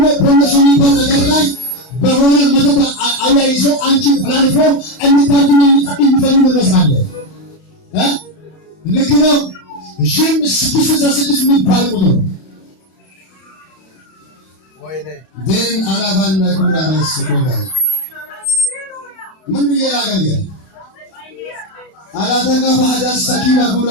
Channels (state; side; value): late; right; 32 ms